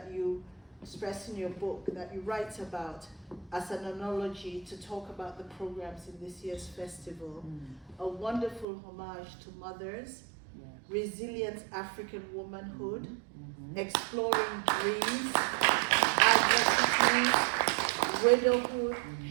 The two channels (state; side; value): drops out; left; at 8.7 s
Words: you express in your book, that you write about as an analogy to talk about the programs in this year's festival. A wonderful homage to mothers, resilient African womanhood, exploring dreams, adversity, widowhood,